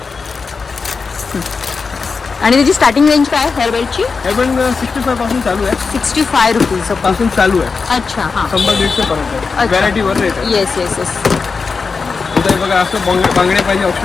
आणि त्याची स्टार्टिंग रेंज काय आहे हेअर बेल्टची? हेअर बँड 65 पासून चालू आहे. 65 रुपीज पासून चालू आहे. अच्छा हां 100-150 पर्यंत व्हरायटी वर रेट आहे. Yes yes yes. इथे बघा असं बांगडे पाहिजे,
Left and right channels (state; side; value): quieter; right; 4.8 dB